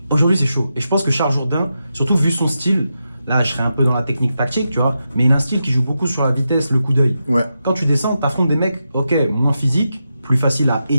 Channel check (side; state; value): both; inverted; correlation -0.87